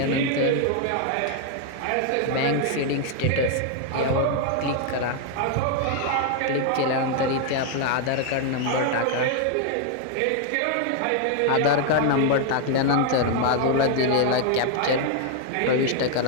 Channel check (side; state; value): both; different; correlation 0.00